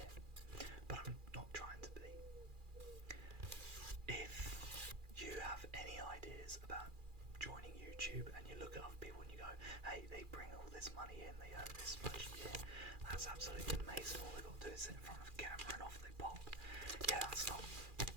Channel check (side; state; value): left; late; 2.4 ms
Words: it, but I'm not trying to be. If you have any ideas about joining YouTube and you look at other people and you go, hey, they bring all this money in, they earn this much a year, that's absolutely amazing, all they've got to do is sit in front of a camera and off they pop. Yeah, that's not